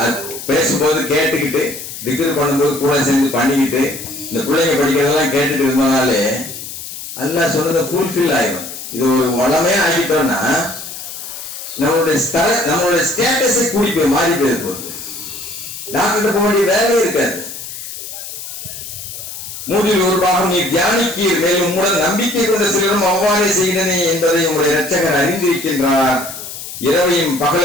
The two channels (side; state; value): left; noise; hiss, 10 dB below the sound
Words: பேசும்போது கேட்டுக்கிட்டு திக்ர் பண்ணும்போது கூட சேர்ந்து பண்ணிக்கிட்டு இந்த பிள்ளைங்க படிக்கிறதெல்லாம் கேட்டுட்டு இருந்தனாலே அல்லாஹ் சொன்னதை ஃபுல்ஃபில் ஆயிடும். இது ஒரு வளமையா ஆகிட்டோம்னா நம்மளுடைய ஸ்டேட்டஸை கூடி போய் மாறி போயிரு போகுது. டாக்டர் போக வேண்டிய வேலையே இருக்காது. மூன்றில் ஒரு பாகம் நீ தியானிக்கீர், மேலும் உங்களுடன் நம்பிக்கை கொண்ட சிலரும் அவ்வாறே செய்தனே என்பதை உங்களுடைய இரட்சகர் அறிந்திருக்கின்றார். இரவையும்